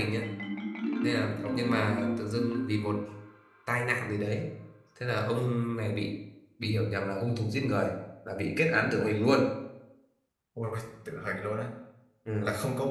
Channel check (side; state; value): both; identical; correlation 1.00